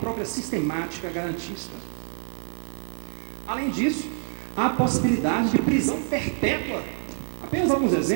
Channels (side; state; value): left; silent; 58 dB below the other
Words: sistemática garantista. Além disso, há a possibilidade de prisão perpétua, apenas alguns